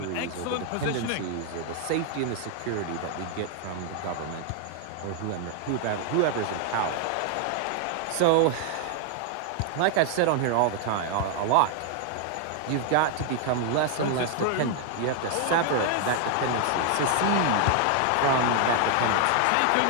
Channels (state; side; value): different; both; correlation 0.00